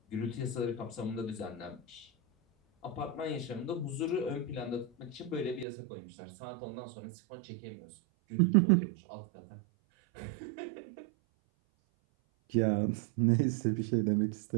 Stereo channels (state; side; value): drops out; left; at 5.7 s